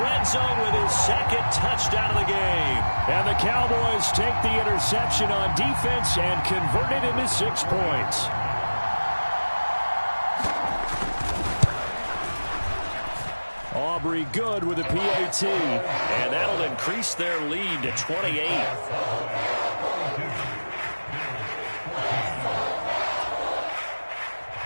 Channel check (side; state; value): both; inverted; correlation -1.00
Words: red zone with his second touchdown of the game. And the Cowboys take the interception on defense and convert it into 6 points. Aubrey good with a PAT. And that'll increase their lead to 28.